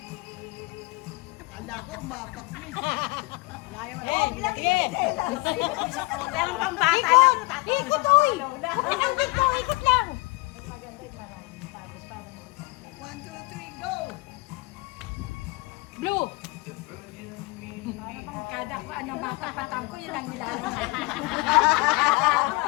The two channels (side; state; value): right; quieter; 24.8 dB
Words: Akala ko, umapak na. Sige. Meron pang bata lang. Ikot, oy. Pinanggit ko, ikot lang. 1, 2, 3, go! Blue. Para bang kada ko ano matapatan ko, yun ang nilalaro.